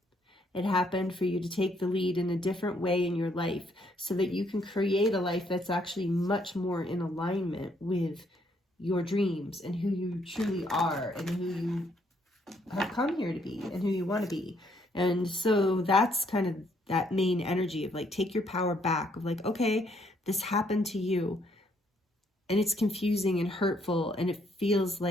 It happened for you to take the lead in a different way in your life so that you can create a life that's actually much more in alignment with your dreams and who you truly are and who you have come here to be and who you want to be. And so that's kind of that main energy of like, take your power back of like, okay, this happened to you and it's confusing and hurtful and it feels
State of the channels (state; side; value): normal; both; correlation 0.70